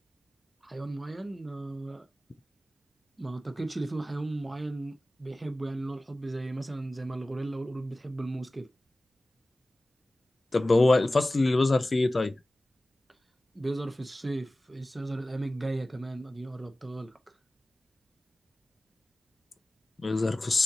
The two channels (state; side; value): normal; both; correlation 0.97